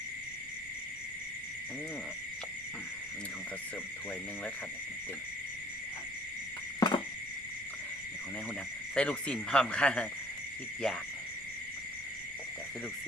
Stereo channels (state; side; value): noise; right; rumble, 19 dB below the sound